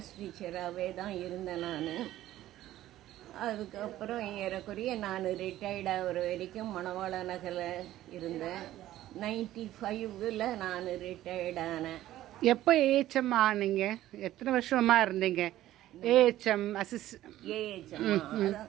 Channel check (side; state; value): left; quieter; 14.1 dB